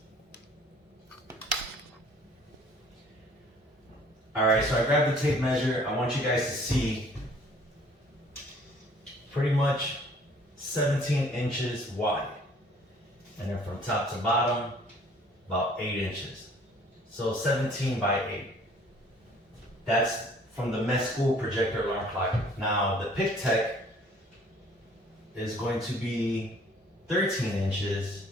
All right, so I grabbed the tape measure. I want you guys to see pretty much 17 inches wide. And then from top to bottom, about 8 inches. So 17 by 8. That's from the Mesqool projector alarm clock. Now the Pictek is going to be 13 inches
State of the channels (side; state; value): both; normal; correlation 0.56